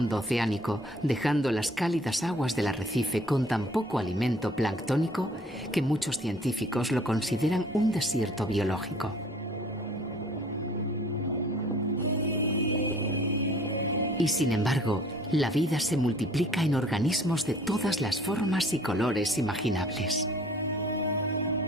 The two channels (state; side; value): normal; both; correlation 0.54